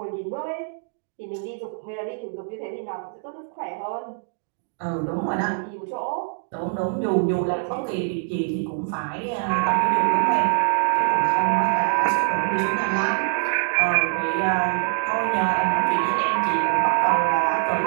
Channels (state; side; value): silent; left; digital silence